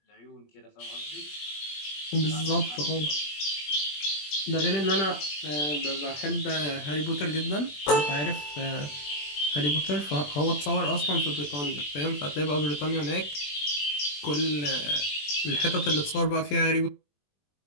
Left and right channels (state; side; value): late; right; 20 ms